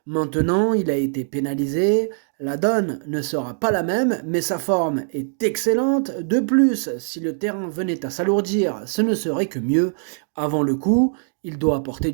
Maintenant, il a été pénalisé, la donne ne sera pas la même, mais sa forme est excellente. De plus, si le terrain venait à s'alourdir, ce ne serait que mieux. Avant le coup, il doit apporter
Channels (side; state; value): left; silent; digital silence